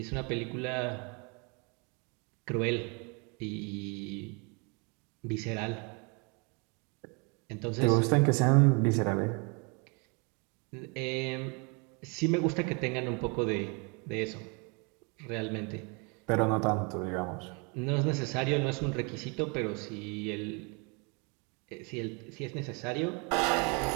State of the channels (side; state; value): left; quieter; 32.6 dB